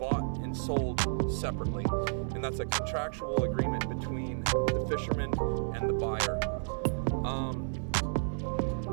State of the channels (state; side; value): silent; left; 57 dB below the other